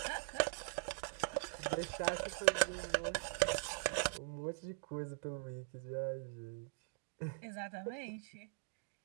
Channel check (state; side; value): silent; left; digital silence